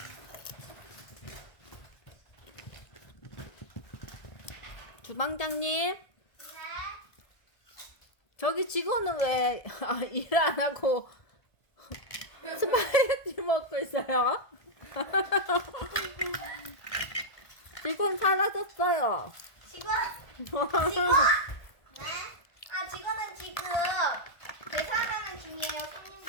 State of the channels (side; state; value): right; late; 1.5 ms